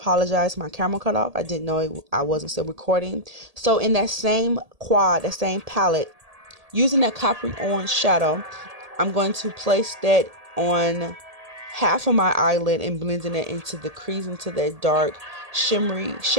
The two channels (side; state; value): left; late; 1.8 ms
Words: my camera cut off. I didn't know I wasn't still recording. So in that same quad, that same palette, using that coppery orange shadow, I'm going to place that on half of my eyelid and blending it into the crease, into that dark shimmery